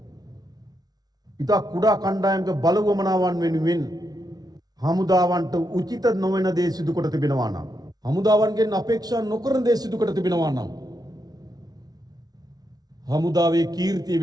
ඉතා කුඩා කණ්ඩායමක බලවමනාවන් වෙනුවෙන් හමුදාවන්ට උචිත නොවන දේ සිදු කොට තිබෙනවා නම්, හමුදාවන්ගෙන් අපේක්ෂා නොකරන දේ සිදු කොට තිබෙනවා නම්, හමුදාවේ කීර්තිය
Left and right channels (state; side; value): late; left; 0.19 ms